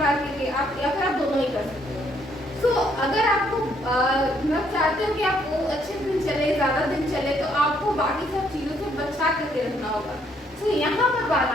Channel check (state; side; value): normal; both; correlation 0.69